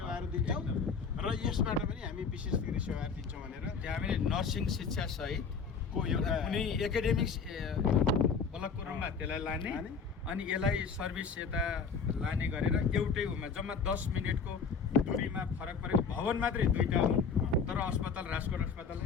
दिन्छौँ र यसबाट पनि हामी विशेषीकृत सेवाहरू दिन्छौँ भनेर त्यहाँ हामीले नर्सिङ शिक्षा सहितको एउटा कुनै एकाडेमिक ब्लकको रूपमा त्यसलाई लाने अनि यसलाई सर्भिस यता लाने गरेर एउटै उमा जम्मा 10 मिनटको दूरीमा फरक परेको भवन मात्रै दुईटा हुन् तर अस्पताल राजकोट अस्पतालै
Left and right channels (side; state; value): right; quieter; 5.6 dB